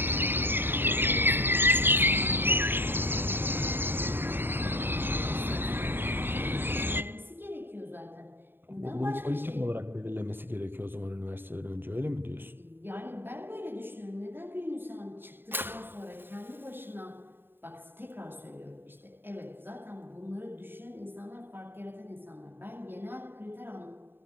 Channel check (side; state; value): left; late; 0.099 ms